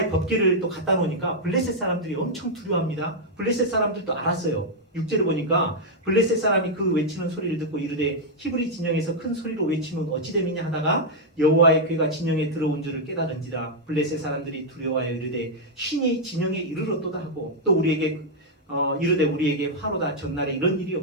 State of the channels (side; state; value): both; normal; correlation -0.03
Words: 법궤를 또 갖다 놓으니까 블레셋 사람들이 엄청 두려워합니다. 블레셋 사람들도 알았어요. 6절을 보니까 블레셋 사람이 그 외치는 소리를 듣고 이르되 히브리 진영에서 큰 소리로 외치면 어찌 됨이냐 하다가 여호와의 궤가 진영에 들어온 줄을 깨달은지라. 블레셋 사람들이 두려워하여 이르되 신이 진영에 이르렀도다 하고 또 우리에게 이르되 우리에게 화로다. 전날에 이런 일이